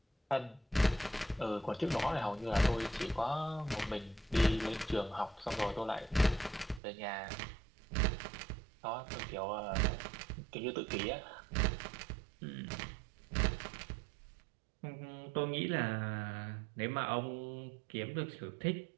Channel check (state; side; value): drops out; left; at 6.8 s